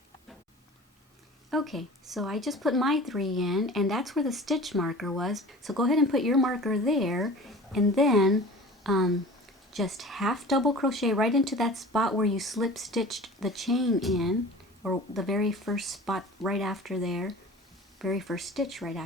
Okay, so I just put my 3 in, and that's where the stitch marker was. So go ahead and put your marker there, and then just half double crochet right into that spot where you slip stitched the chain in, or the very first spot right after there, very first stitch right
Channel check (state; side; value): normal; both; correlation 0.40